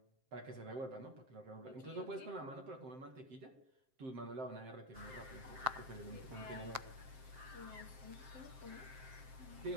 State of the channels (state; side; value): late; left; 7.6 ms